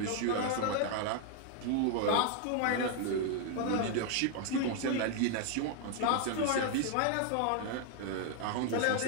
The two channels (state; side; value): different; both; correlation 0.00